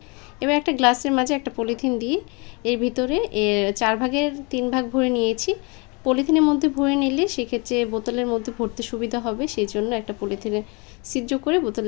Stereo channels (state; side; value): quieter; right; 30.5 dB